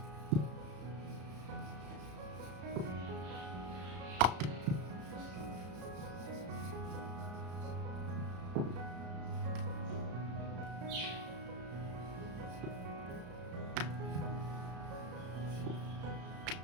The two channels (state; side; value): late; left; 34 ms